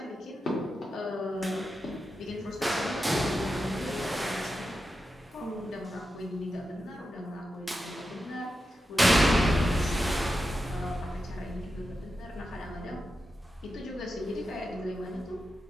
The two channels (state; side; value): normal; both; correlation 0.89